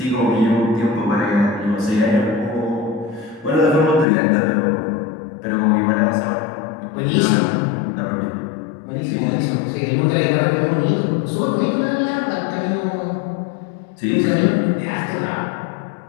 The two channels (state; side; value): drops out; right; at 4.0 s